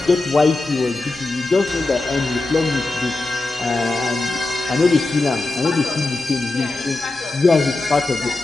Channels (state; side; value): quieter; right; 3.1 dB